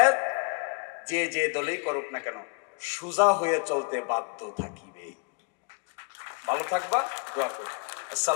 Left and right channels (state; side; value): quieter; right; 33.2 dB